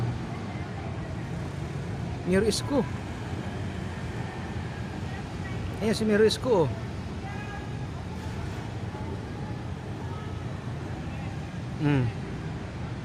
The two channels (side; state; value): both; identical; correlation 1.00